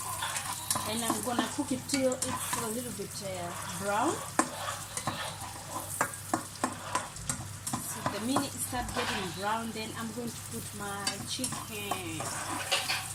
And I'm gonna cook it till it's a little bit brown. So the minute it starts getting brown, then I'm going to put my chicken.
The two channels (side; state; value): both; identical; correlation 1.00